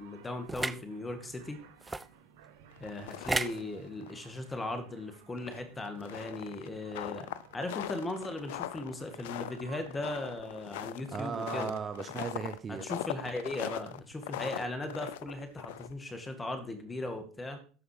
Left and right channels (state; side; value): normal; both; correlation 0.63